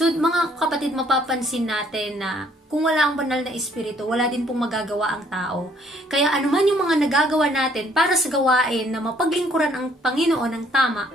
mga kapatid, mapapansin natin na kung wala ang banal na espiritu, wala din pong magagawa ang tao. Kaya anuman yung mga nagagawa natin para sa gawain na mapaglingkuran ang Panginoon ng tama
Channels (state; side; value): normal; both; correlation 0.63